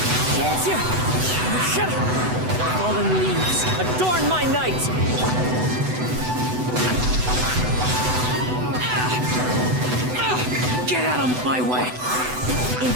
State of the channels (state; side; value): late; left; 8.0 ms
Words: Fallen leaves, adorn my night! Get out of my way!